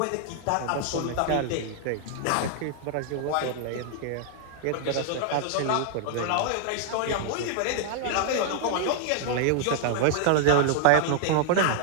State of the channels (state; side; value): different; both; correlation -0.01